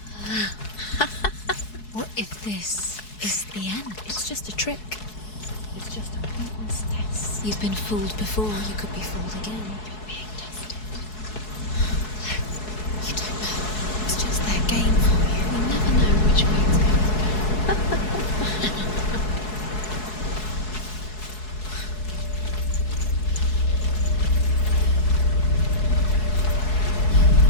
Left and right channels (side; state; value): right; late; 4.7 ms